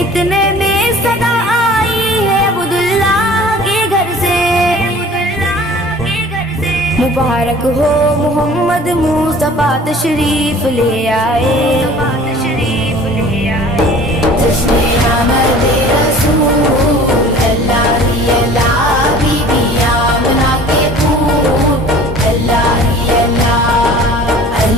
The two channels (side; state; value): both; normal; correlation 0.46